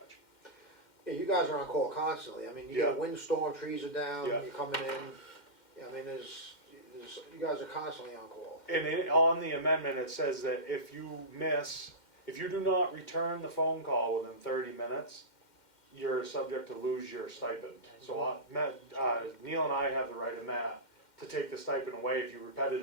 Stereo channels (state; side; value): late; right; 2.1 ms